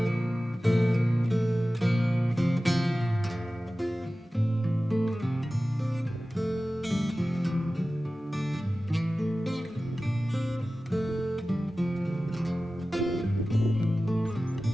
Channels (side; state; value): both; normal; correlation 0.96